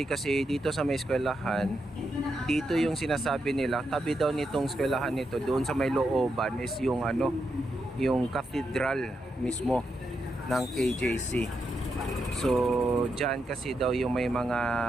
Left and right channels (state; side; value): normal; both; correlation 0.84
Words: kasi dito sa may eskwelahan, dito yung sinasabi nila, tabi daw nitong eskwelahan nito, doon sa may looban is yung yung cathedral mismo ng KJC. So dyan kasi daw yung may